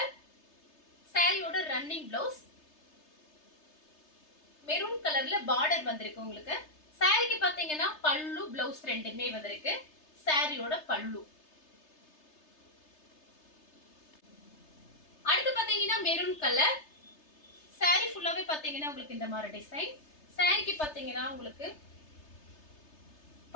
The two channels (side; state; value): right; late; 3.3 ms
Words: சாரியோட ரன்னிங் பிளவுஸ். மெரூன் கலர்ல பார்டர் வந்திருக்கு உங்களுக்கு. சாரிக்கு பாத்தீங்கன்னா பல்லு, பிளவுஸ் ரெண்டுமே வந்திருக்கு. சாரியோட பல்லு. அடுத்து பாத்தீங்கன்னா மெரூன் கலர். சாரி ஃபுல்லாவே பாத்தீங்கன்னா உங்களுக்கு இந்த மாதிரி டிசைன். சாரிக்கு பாத்தீங்கன்னா உங்களுக்கு